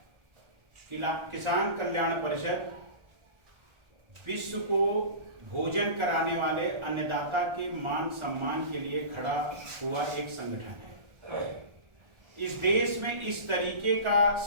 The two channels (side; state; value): left; late; 1.4 ms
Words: किसान कल्याण परिषद विश्व को भोजन कराने वाले अन्नदाता के मान सम्मान के लिए खड़ा हुआ एक संगठन है। इस देश में इस तरीके का